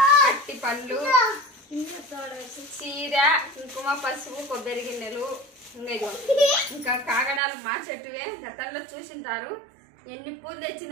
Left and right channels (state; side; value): drops out; left; at 7.4 s